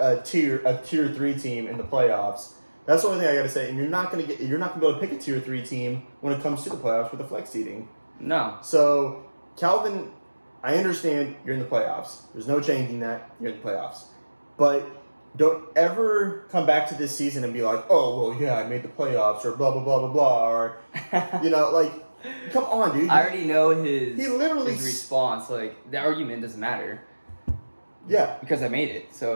tier 3 team in the playoffs. That's the only thing I got to say. And you're not going to be able to pick a tier 3 team when it comes to the playoffs with the flex seeding. No. So, Calvin, I understand you're in the playoffs. There's no changing that. You're in the playoffs. But don't ever come back to this season and be like, oh, well, yeah, I made the playoffs, or blah, blah, blah, blah, blah, or, like, come on, dude. I already know his his response. Like, the argument doesn't matter. Yeah. Because I made it.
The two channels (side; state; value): both; inverted; correlation -1.00